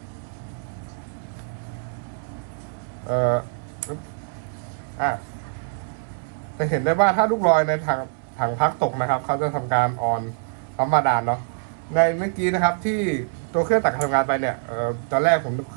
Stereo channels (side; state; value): left; silent; 62 dB below the other